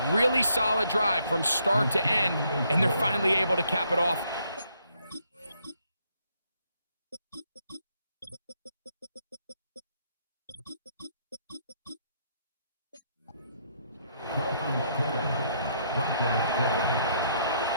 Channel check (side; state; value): both; inverted; correlation -0.71